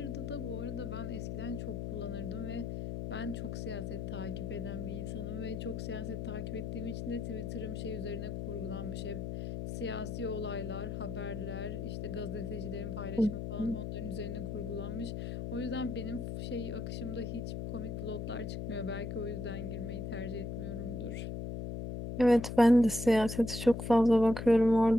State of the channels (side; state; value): left; noise; hum, 4 dB below the sound